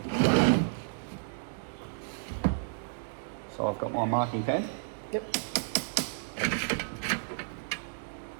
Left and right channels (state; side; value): silent; left; digital silence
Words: So I've got my marking pen. Yep.